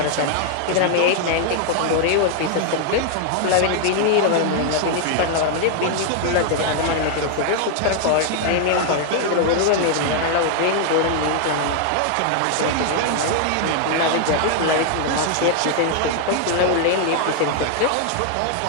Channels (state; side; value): different; both; correlation 0.00